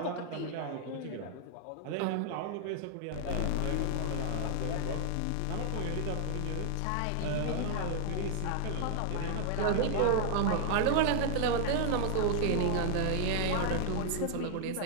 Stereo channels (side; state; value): both; different; correlation 0.00